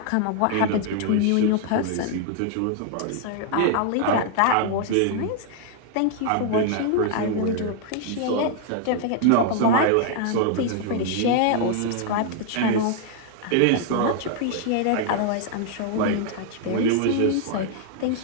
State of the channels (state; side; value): different; both; correlation 0.00